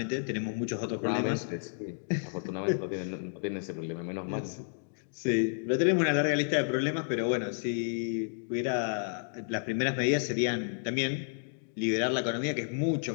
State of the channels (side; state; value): right; silent; digital silence